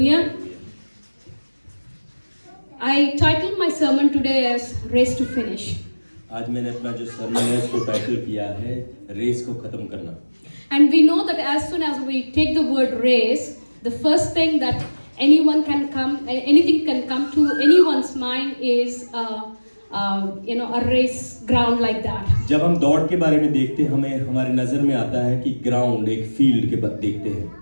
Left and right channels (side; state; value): both; inverted; correlation -1.00